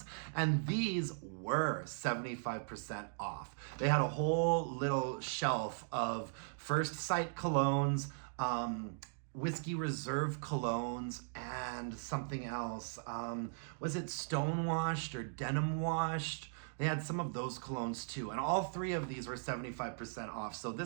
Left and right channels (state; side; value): silent; left; digital silence